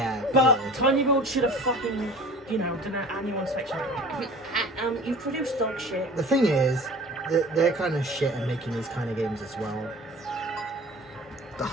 But yeah. Tiny Build should have fucking, done an annual inspection. You've produced dog shit. The thing is, they're kind of shit at making these kind of games as well.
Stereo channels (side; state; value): both; normal; correlation 0.42